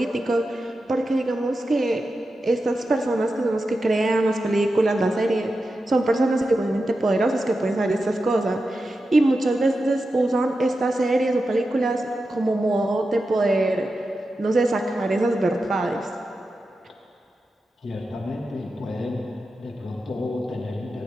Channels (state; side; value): normal; both; correlation 0.91